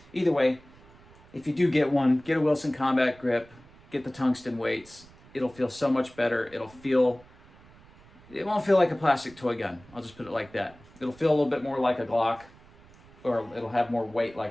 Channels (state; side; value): noise; right; rumble, 25 dB below the sound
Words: either way, if you do get one, get a Wilson Combat grip, get the tungsten weights. It'll feel so much better. It won't feel like a plastic toy gun. I'll just put it like that. It'll feel a little bit more like a Glock, or it'll have more weight